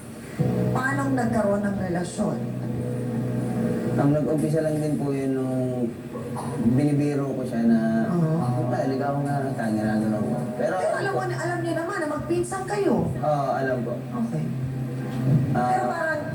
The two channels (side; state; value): both; identical; correlation 1.00